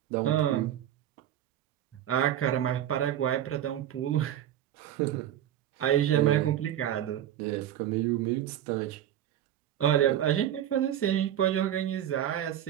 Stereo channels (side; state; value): left; quieter; 11.3 dB